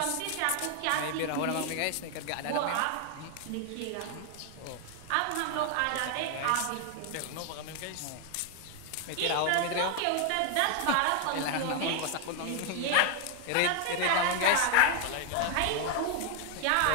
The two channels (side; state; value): both; different; correlation 0.00